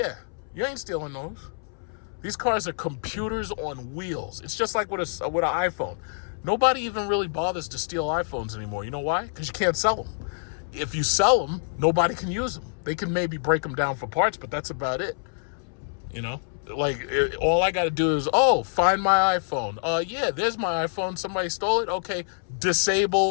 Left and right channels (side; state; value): right; silent; 61 dB below the other